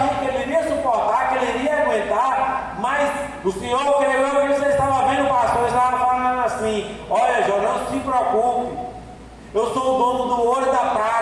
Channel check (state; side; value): identical; both; correlation 1.00